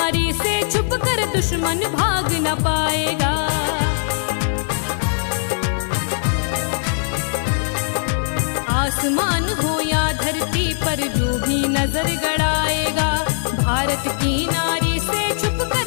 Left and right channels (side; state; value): right; silent; 65 dB below the other